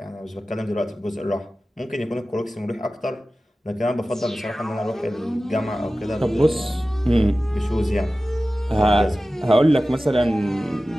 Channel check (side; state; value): both; normal; correlation 0.95